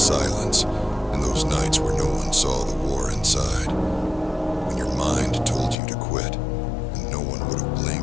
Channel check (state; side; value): drops out; right; at 5.8 s